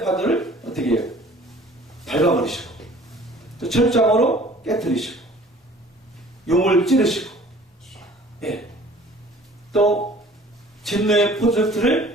파도를 어떻게 해요? 밟아버리시고, 또 철장으로 깨뜨리시고, 용을 찌르시고, 예. 또 진노의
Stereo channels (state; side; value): normal; both; correlation 0.50